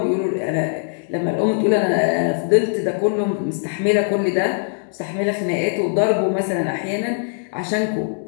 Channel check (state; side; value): silent; right; 63 dB below the other